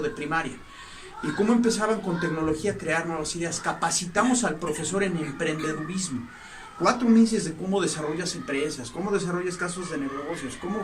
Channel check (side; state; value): both; identical; correlation 1.00